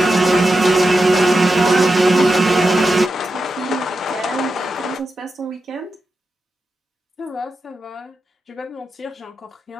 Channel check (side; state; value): both; normal; correlation 0.89